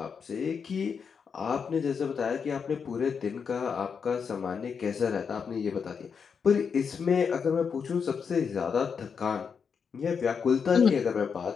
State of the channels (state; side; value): quieter; right; 6.2 dB